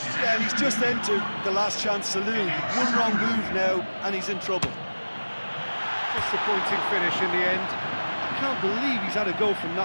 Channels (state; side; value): inverted; both; correlation -1.00